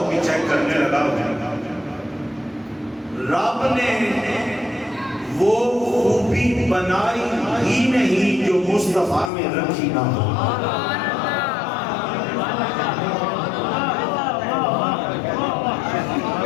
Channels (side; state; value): right; drops out; at 9.3 s